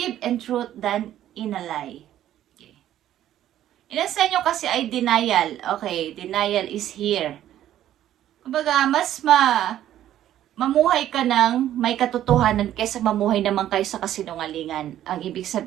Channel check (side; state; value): left; quieter; 12.1 dB